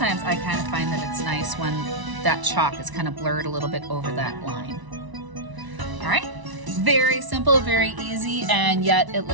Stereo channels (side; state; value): left; late; 1.0 ms